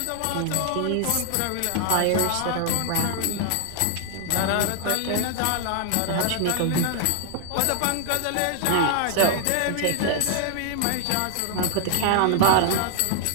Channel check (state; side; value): different; both; correlation 0.00